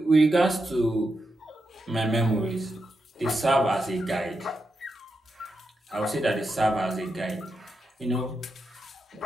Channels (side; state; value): both; normal; correlation 0.86